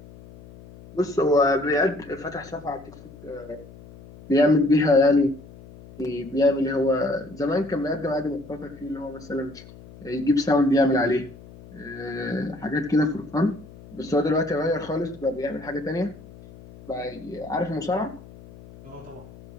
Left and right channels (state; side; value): noise; left; hum, 19 dB below the sound